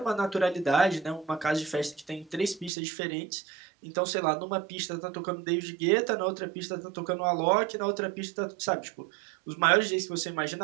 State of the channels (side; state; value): left; drops out; at 2.7 s